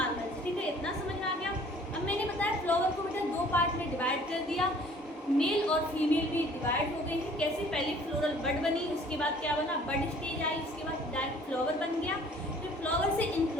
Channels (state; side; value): normal; both; correlation 0.54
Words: ठीक है, इतना समझ में आ गया। अब मैंने बताया फ्लावर को बेटा दो पार्ट में डिवाइड कर दिया, मेल और फीमेल भी डिवाइड हो गए हैं। कैसे, पहले फ्लोरल बड बनी, उसके बाद क्या बना, बड स्टेज आई, उसके बाद डायरेक्ट फ्लावर बन गया, फिर फ्लावर से